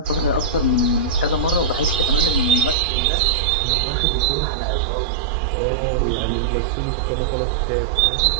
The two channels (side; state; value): left; drops out; at 2.8 s